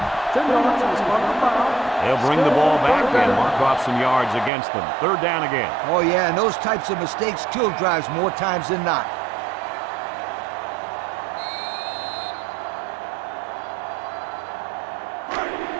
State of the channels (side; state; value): left; drops out; at 4.5 s